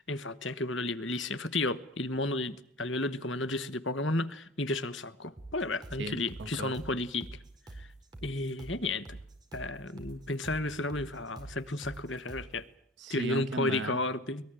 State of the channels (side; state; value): both; normal; correlation 0.40